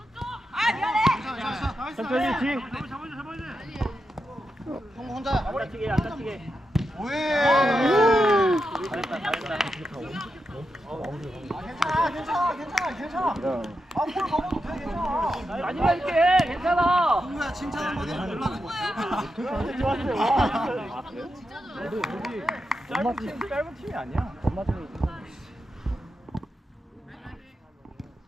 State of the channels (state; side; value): normal; both; correlation 0.87